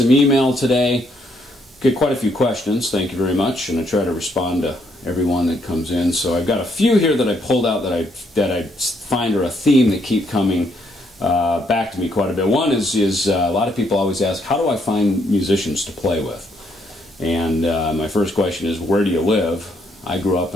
email today. Get quite a few questions, thank you very much, and I try to respond to everyone that comes in. So I've got a few here that I pulled out that I find are a theme that keep coming back to me quite a bit. One is a lot of people always ask, how do I find musicians to play with? And my first question is, where do you live? I grew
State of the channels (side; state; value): both; normal; correlation 0.72